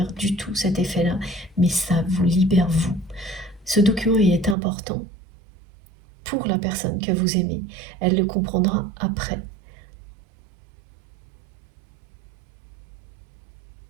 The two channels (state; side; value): drops out; left; at 4.5 s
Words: du tout cet effet-là, mais ça vous libère vous. Ce document, il est important pour la personne que vous aimez. Elle le comprendra après.